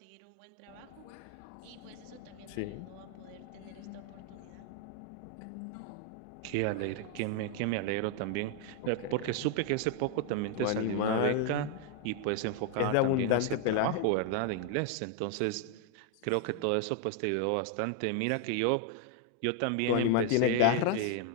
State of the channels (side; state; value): both; different; correlation 0.00